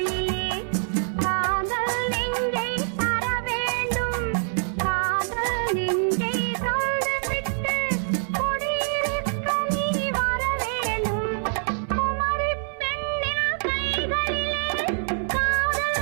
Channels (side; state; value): left; silent; 62 dB below the other